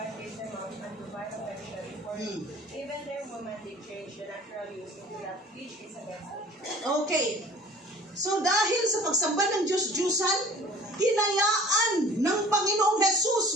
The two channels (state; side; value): normal; both; correlation 0.47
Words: gave them up unto vile affection, for even their women they change the natural use into that which is against nature. Okay. So dahil sa pagsamba ng Diyos-Diyosan, hinayaan ng Panginoong